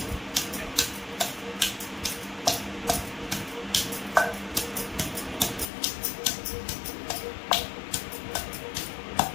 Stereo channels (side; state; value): right; drops out; at 5.7 s